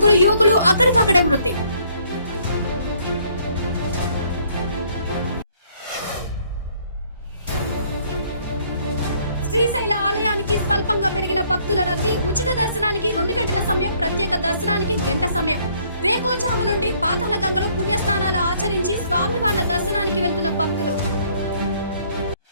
యువకులు అక్కడికక్కడే మృతి. శ్రీశైల ఆలయానికి స్వల్పంగా పెరిగిన భక్తుల రద్దీ. ఉచిత దర్శనానికి 2 గంటల సమయం, ప్రత్యేక దర్శనానికి గంట సమయం. వేకోజాము నుండి పాతాళ గంగలో పుణ్యస్నానాలు ఆచరించి స్వామివార్ల దర్శనానికి వెళ్తున్న భక్తులు.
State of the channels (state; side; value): inverted; both; correlation -0.63